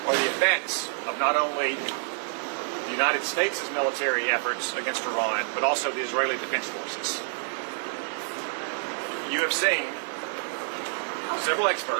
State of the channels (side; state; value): left; silent; 60 dB below the other